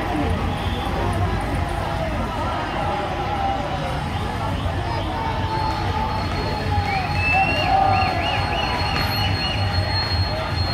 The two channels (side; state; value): both; identical; correlation 1.00